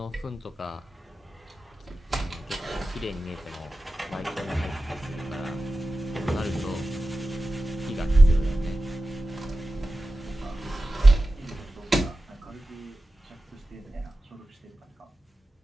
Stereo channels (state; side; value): normal; both; correlation 0.94